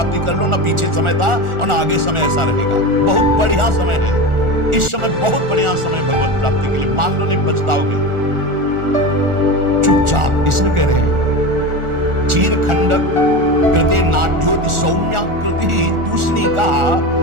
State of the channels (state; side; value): late; left; 1.4 ms